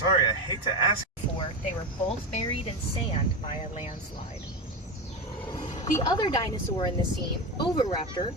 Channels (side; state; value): both; normal; correlation 0.18